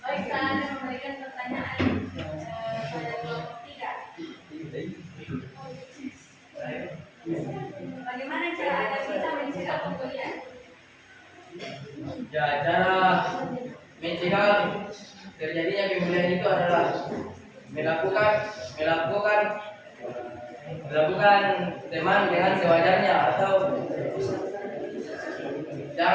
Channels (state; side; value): identical; both; correlation 1.00